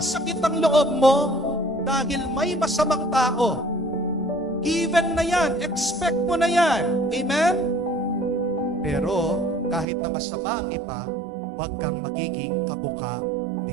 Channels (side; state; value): left; drops out; at 9.9 s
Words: ang loob mo dahil may masamang tao. Given na yan, expect mo na yan. Amen? Pero kahit na masama ang iba, huwag kang magiging kabuka